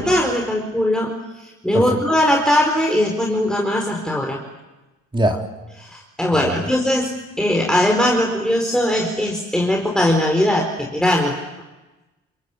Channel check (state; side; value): normal; both; correlation 0.76